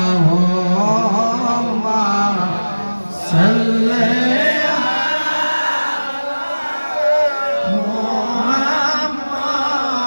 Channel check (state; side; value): inverted; both; correlation -1.00